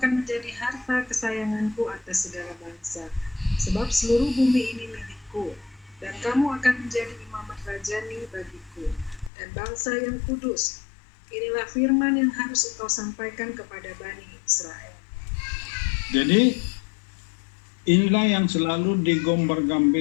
menjadi harta kesayanganku atas segala bangsa. Sebab seluruh bumi ini milikku, dan kamu akan menjadi imamat rajani bagiku, dan bangsa yang kudus. Inilah firman yang harus engkau sampaikan kepada Bani Israel. Jadi inilah yang selalu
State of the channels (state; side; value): drops out; right; at 9.3 s